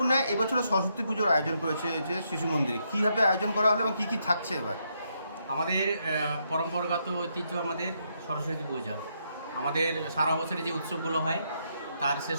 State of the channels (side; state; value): both; inverted; correlation -0.78